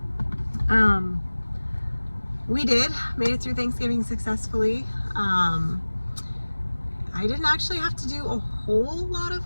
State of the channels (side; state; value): both; inverted; correlation -1.00